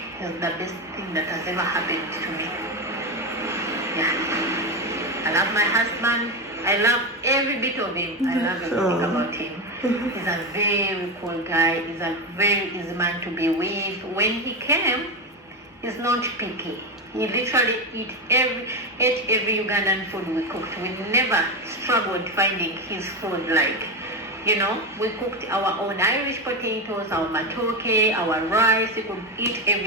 it's the best thing that has ever happened to me. Yeah. I love my husband. I love every bit of him. I love everything about him. He's a very cool guy. He's a very easy man to be with. When he came, he's not picky. He literally ate every Ugandan food we cooked. We never struggled finding his food. We cooked our own Irish potatoes, our matoke, our rice. He could eat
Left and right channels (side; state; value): both; normal; correlation 0.14